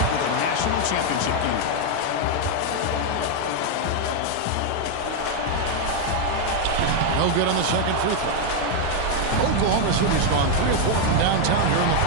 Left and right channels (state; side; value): different; both; correlation 0.01